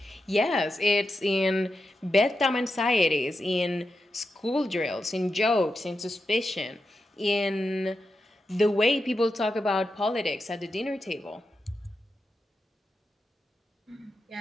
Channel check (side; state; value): both; normal; correlation 0.88